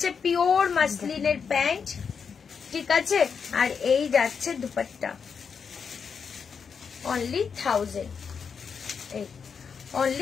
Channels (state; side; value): quieter; right; 6.2 dB